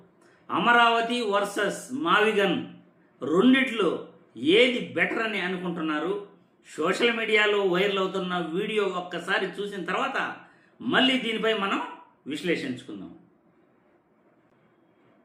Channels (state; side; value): identical; both; correlation 1.00